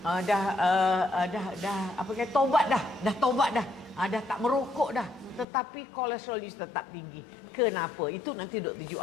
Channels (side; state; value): right; drops out; at 5.5 s